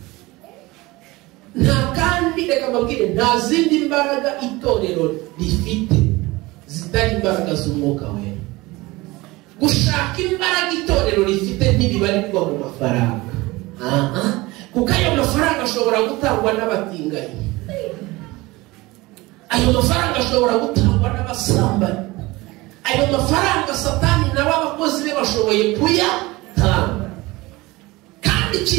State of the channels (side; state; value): left; quieter; 21.2 dB